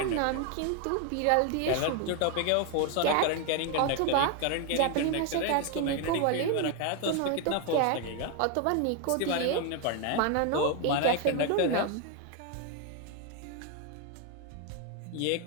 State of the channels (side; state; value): both; different; correlation 0.01